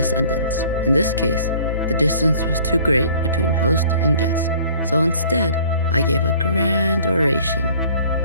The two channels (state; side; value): inverted; both; correlation -0.52